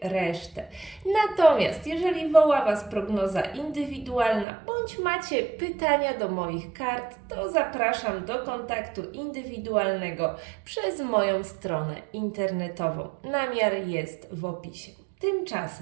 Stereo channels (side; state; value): left; drops out; at 4.5 s